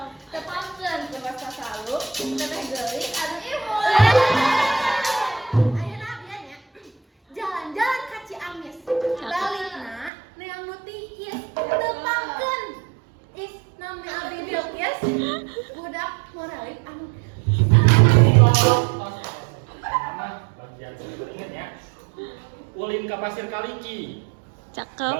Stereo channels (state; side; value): drops out; left; at 10.1 s